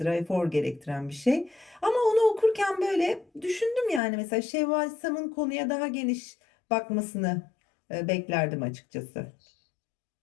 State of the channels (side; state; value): right; drops out; at 4.0 s